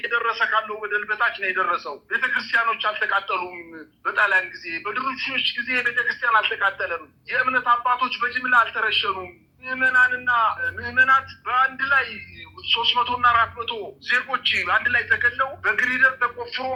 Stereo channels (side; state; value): both; identical; correlation 1.00